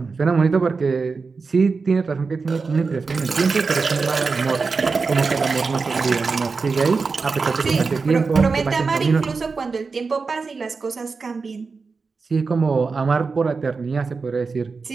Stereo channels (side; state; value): left; quieter; 4.6 dB